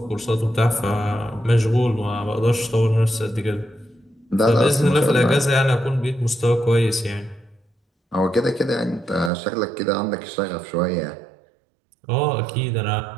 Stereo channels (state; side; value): drops out; left; at 9.3 s